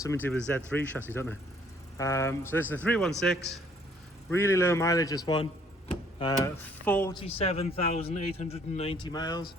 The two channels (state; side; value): normal; both; correlation 0.62